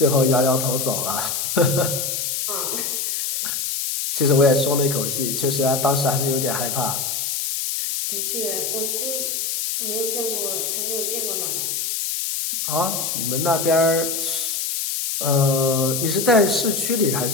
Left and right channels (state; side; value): noise; left; hiss, 1 dB below the sound